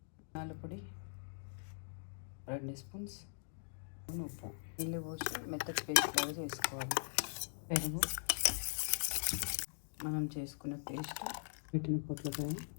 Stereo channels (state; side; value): silent; right; digital silence